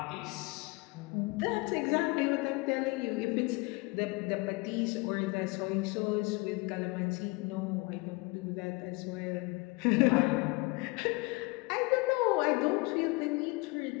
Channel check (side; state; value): right; quieter; 25.7 dB